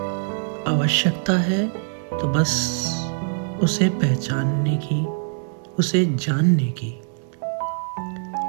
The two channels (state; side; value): silent; left; 63 dB below the other